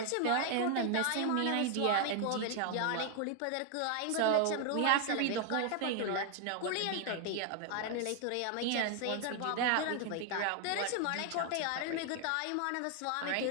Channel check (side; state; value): both; different; correlation 0.00